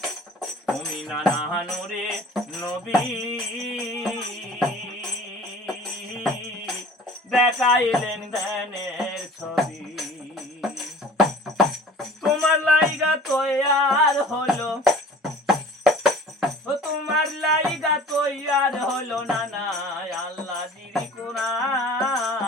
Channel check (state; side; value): normal; both; correlation 0.45